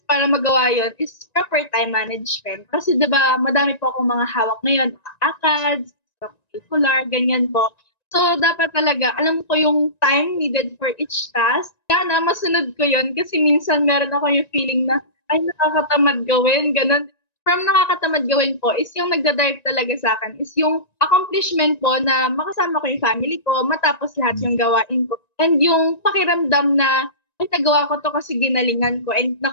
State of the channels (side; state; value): right; late; 1.9 ms